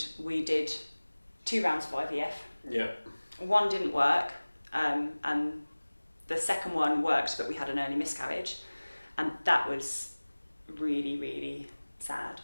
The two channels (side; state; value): both; inverted; correlation -1.00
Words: we did 2 rounds of IVF. Yeah. One didn't work, and the second one worked, but we had an early miscarriage. And that was really, really sad.